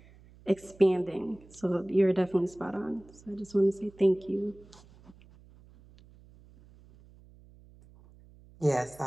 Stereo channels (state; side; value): noise; right; hum, 25 dB below the sound